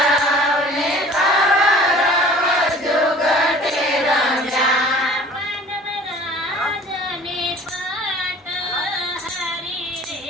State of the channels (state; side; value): normal; both; correlation 0.47